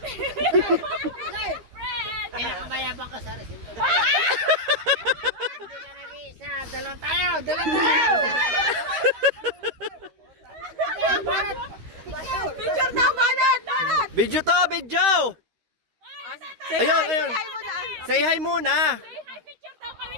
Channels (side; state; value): left; late; 13 ms